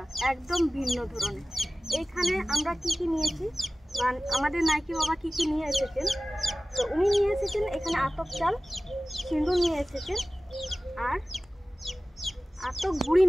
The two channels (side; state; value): both; normal; correlation 0.97